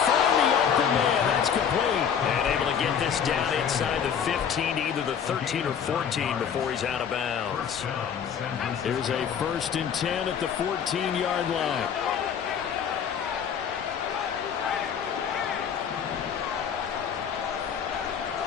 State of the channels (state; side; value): quieter; right; 7.8 dB